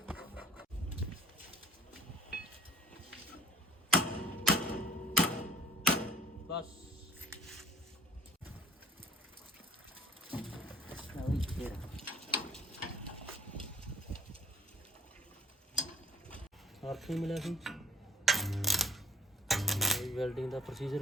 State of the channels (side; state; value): both; normal; correlation 0.54